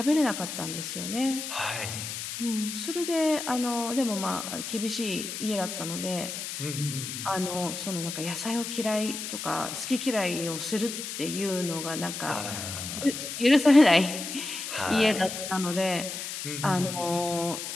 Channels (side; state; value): left; noise; hiss, 6 dB below the sound